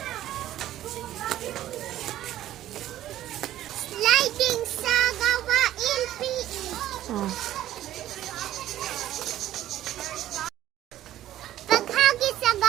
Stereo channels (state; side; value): quieter; left; 13.1 dB